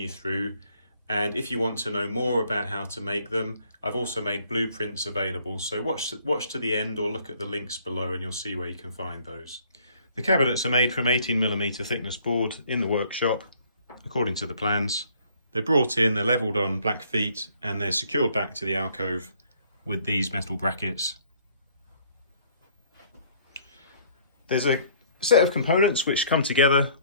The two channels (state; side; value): inverted; both; correlation -0.61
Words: through, and if you want to know more about how to make them, I've also made blueprints available, so watch to the end or look at the links below and you'll see where you can find those. The cabinets are made from 18mm thickness board in the workshop according to the plans. They're brought in, they're levelled on black feet, and they're secured back to the alcove with these metal brackets. There's a set of components which come together